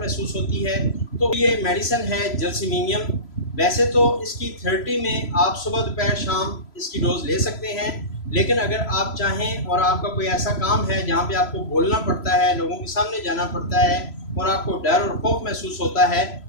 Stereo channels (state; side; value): late; right; 3.0 ms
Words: ہوتی ہے۔ تو یہ میڈیسن ہے جلسیمیم۔ ویسے تو اس کی 30 میں آپ صبح دوپہر شام اس کی ڈوز لے سکتے ہیں، لیکن اگر آپ چاہیں اور آپ کا کوئی ایسا کام ہے جہاں پہ آپ کو بولنا پڑتا ہے، لوگوں کے سامنے جانا پڑتا ہے اور آپ کو ڈر اور خوف محسوس ہوتا ہے،